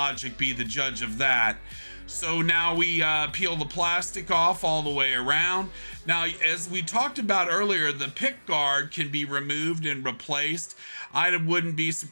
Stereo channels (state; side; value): inverted; both; correlation -1.00